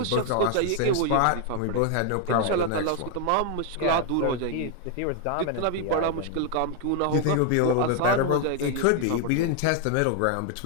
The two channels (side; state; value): both; different; correlation 0.00